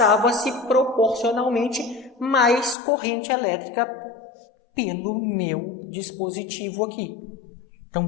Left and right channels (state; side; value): drops out; right; at 2.8 s